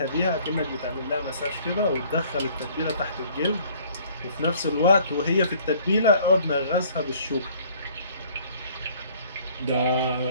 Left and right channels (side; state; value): both; inverted; correlation -0.56